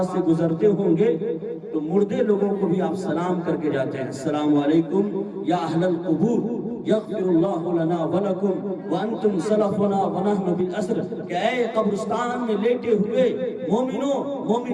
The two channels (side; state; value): both; identical; correlation 1.00